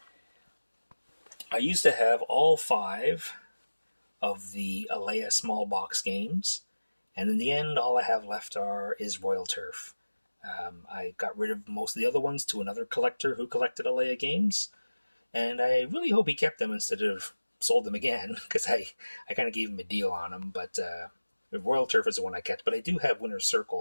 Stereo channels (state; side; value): inverted; both; correlation -1.00